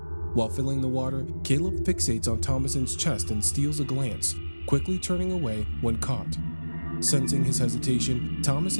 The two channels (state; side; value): inverted; both; correlation -1.00